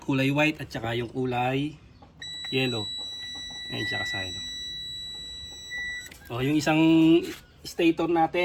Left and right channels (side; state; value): both; identical; correlation 1.00